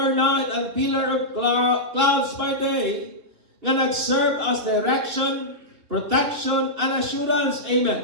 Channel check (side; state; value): left; late; 3.0 ms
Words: night and pillar of clouds by day, nga nag-serve as direction, protection, and assurance.